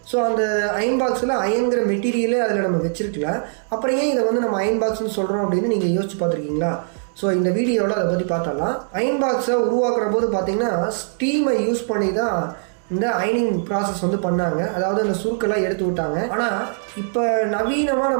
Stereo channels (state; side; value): silent; left; digital silence